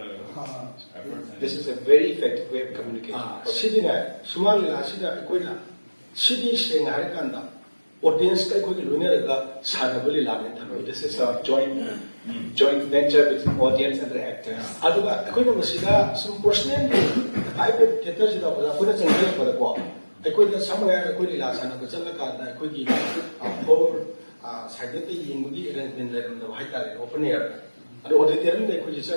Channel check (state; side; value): inverted; both; correlation -1.00